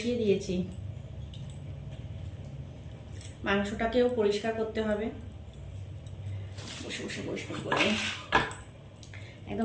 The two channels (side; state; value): both; identical; correlation 1.00